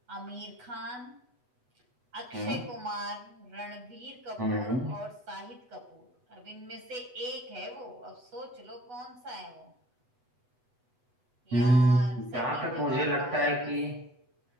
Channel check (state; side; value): late; left; 8.1 ms